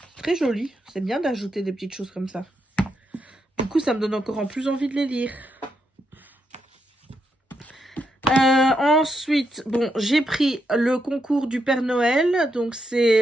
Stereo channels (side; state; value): both; normal; correlation 0.81